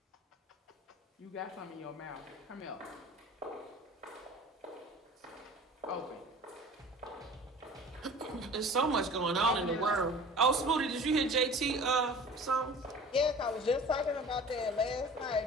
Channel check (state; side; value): normal; both; correlation 0.42